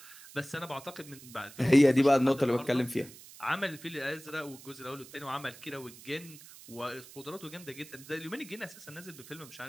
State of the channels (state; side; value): noise; right; hiss, 18 dB below the sound